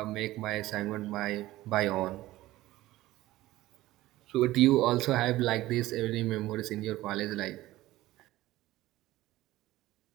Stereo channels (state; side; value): quieter; left; 16.7 dB